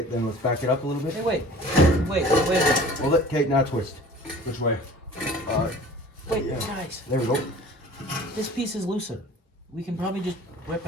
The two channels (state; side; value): normal; both; correlation 0.45